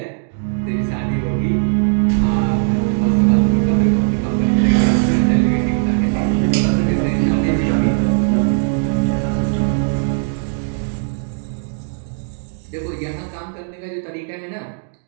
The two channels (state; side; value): silent; left; digital silence